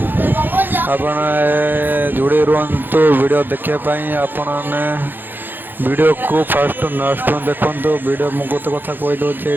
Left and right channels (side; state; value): left; late; 0.093 ms